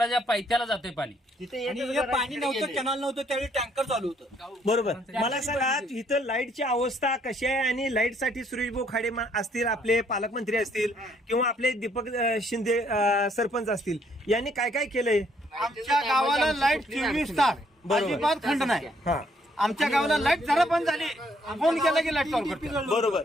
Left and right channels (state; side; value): normal; both; correlation 0.68